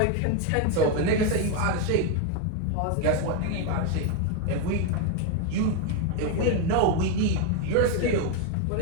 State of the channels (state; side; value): different; both; correlation 0.02